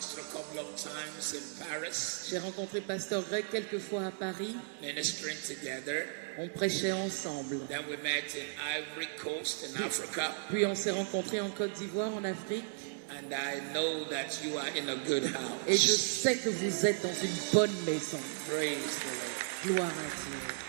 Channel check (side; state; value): left; silent; digital silence